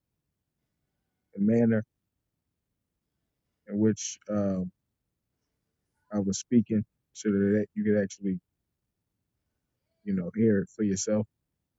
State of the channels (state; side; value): identical; both; correlation 1.00